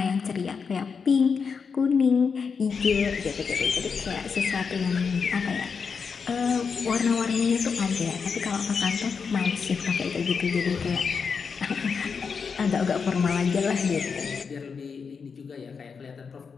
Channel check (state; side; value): quieter; right; 5.7 dB